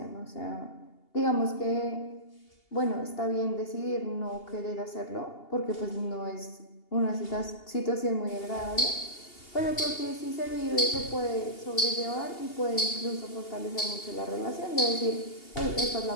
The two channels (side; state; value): right; late; 2.8 ms